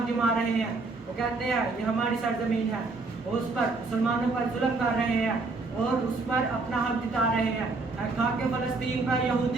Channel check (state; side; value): quieter; left; 3.7 dB